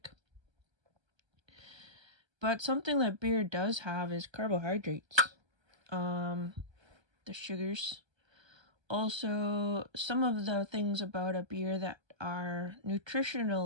But something that beer does have is carbohydrates. The sugars. Also, some of the things about a beer that are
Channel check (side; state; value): left; late; 1.3 ms